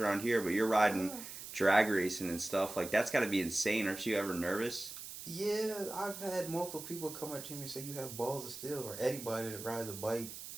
here, but you're riding drag racing and stuff, like that's got to be insane. Aren't you ever nervous? Yeah, I've had multiple people come up to me and say you have balls of steel, or anybody that rides a bike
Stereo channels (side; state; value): right; noise; hiss, 11 dB below the sound